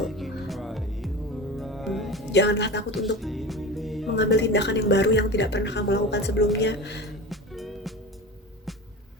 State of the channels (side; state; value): both; normal; correlation 0.30